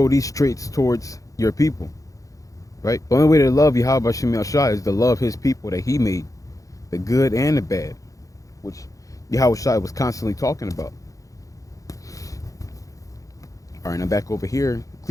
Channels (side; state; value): right; late; 0.16 ms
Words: these traits towards your people. Right? The only way to love Yahweh Shem Yahshua is to love his people that he made, the good and the bad, which Yahweh Shai was constantly talking about. All right, now back over here,